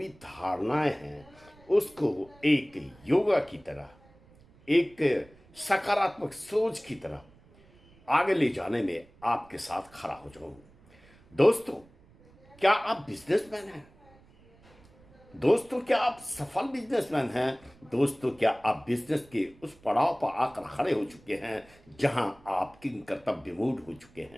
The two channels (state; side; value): noise; right; rumble, 27 dB below the sound